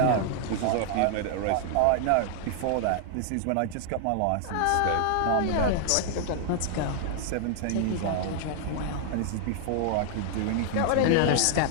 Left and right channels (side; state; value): both; different; correlation 0.00